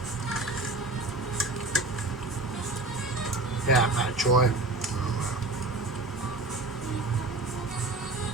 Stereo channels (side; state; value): left; quieter; 3.1 dB